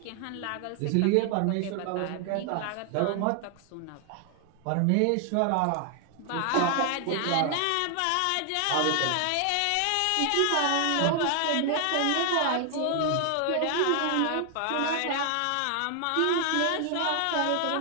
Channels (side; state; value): both; different; correlation 0.00